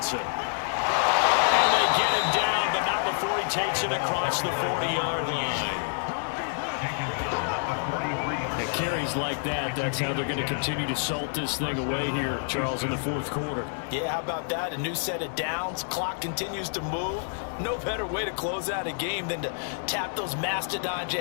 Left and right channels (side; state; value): right; silent; digital silence